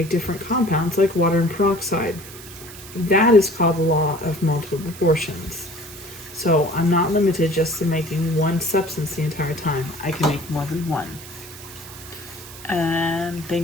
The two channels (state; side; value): noise; right; hiss, 16 dB below the sound